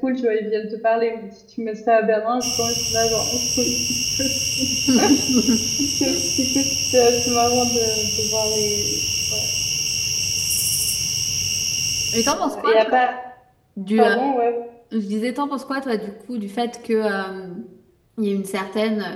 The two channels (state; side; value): identical; both; correlation 1.00